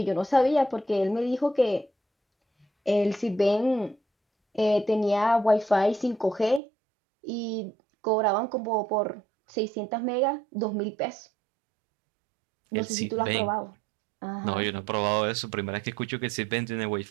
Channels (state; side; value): drops out; left; at 6.6 s